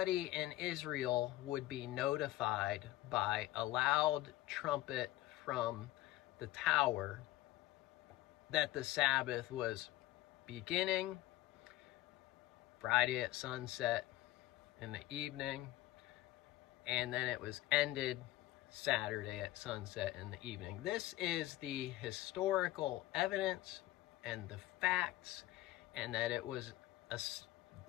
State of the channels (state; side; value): quieter; right; 16.5 dB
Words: in Israel would be notified by a loud trumpet from the tower that the Sabbath was beginning Friday at sunset in the evening, and then it was ended Saturday at sunset in the evening. This is the historical evidence and the facts, and that it was